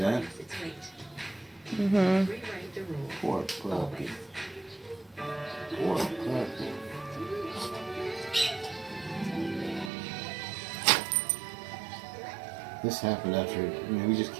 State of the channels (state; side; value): drops out; left; at 9.9 s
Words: that. Mm-hmm. Poor puppy. Poor puppy. This happened after, we just